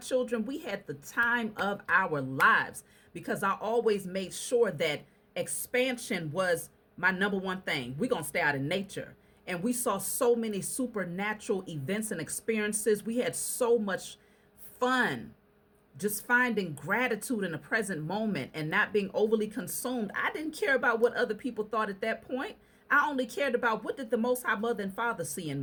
we had the time of our lives, because I always made sure that expansion was my number one thing. We're going to stay out in nature. And we saw so many supernatural events and experiences. We had so much fun just finding gratitude in the present moment and not being overly consumed. I didn't care about what other people thought at that point. I only cared about, what did the Most High Mother and Father see in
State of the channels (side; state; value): both; identical; correlation 1.00